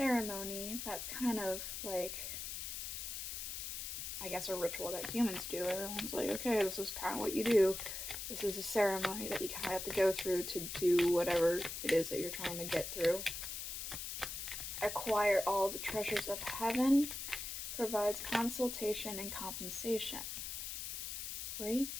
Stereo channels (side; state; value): left; noise; hiss, 5 dB below the sound